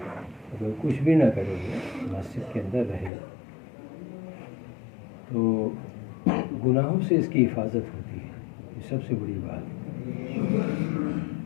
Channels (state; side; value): drops out; right; at 3.1 s